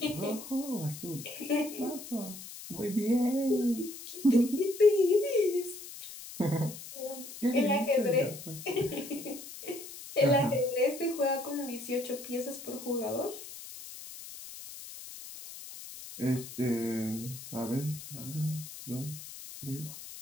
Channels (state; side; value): noise; left; hiss, 13 dB below the sound